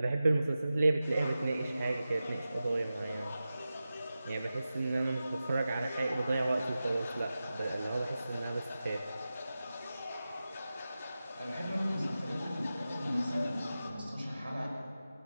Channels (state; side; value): inverted; both; correlation -0.93